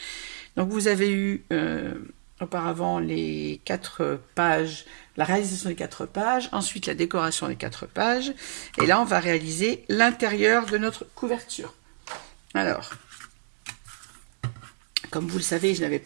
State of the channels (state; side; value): silent; left; digital silence